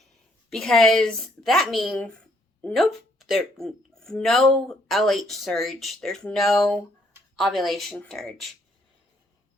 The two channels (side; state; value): both; normal; correlation 0.68